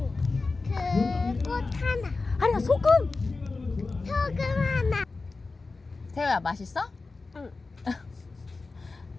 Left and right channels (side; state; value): right; quieter; 3.8 dB